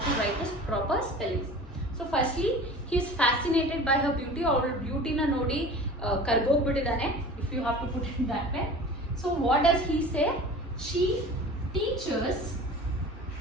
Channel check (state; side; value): normal; both; correlation 0.39